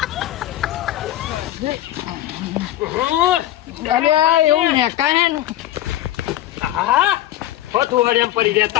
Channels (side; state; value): right; quieter; 13.8 dB